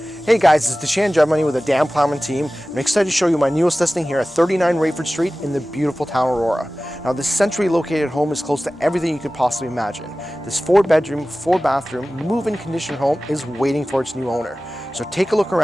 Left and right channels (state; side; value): normal; both; correlation 0.97